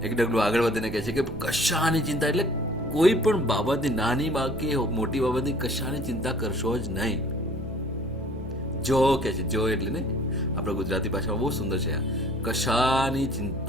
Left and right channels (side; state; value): both; normal; correlation 0.53